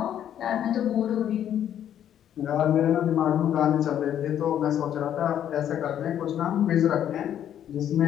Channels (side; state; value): right; quieter; 10.3 dB